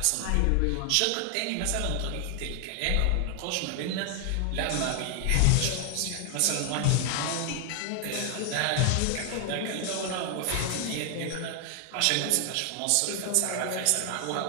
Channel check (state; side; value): different; both; correlation 0.00